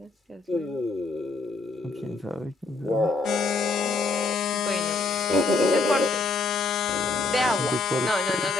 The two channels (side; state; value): right; quieter; 3.6 dB